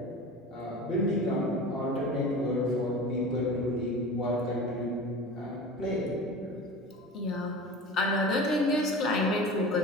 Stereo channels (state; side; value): normal; both; correlation 0.34